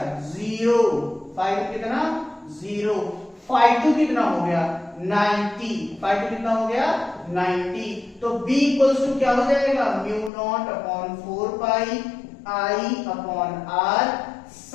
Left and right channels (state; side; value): drops out; right; at 10.3 s